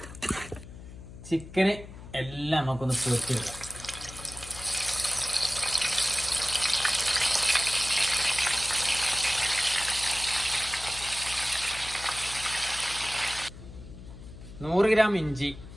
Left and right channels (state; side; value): noise; left; hum, 15 dB below the sound